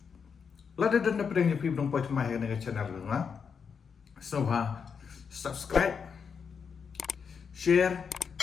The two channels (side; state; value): right; quieter; 6.3 dB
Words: lada dan dapat yang pi dong poi mai ke channel nga so ha subscribe share